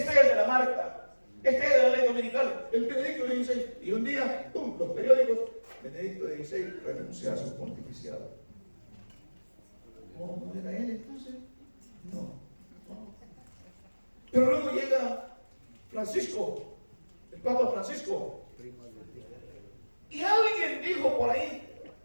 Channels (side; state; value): both; inverted; correlation -1.00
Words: de la marca, este es de la ley dominical, el Benedicto XVI. Y un día, los periódicos, Benedicto XVI renuncia a su pontificado. ¿No era él entonces? No. Pero luego llega Francisco, el Papa Francisco, y alguien dijo por ahí